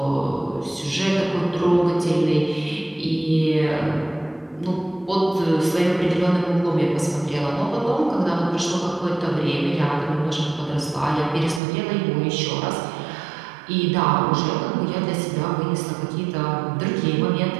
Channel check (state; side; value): drops out; left; at 11.6 s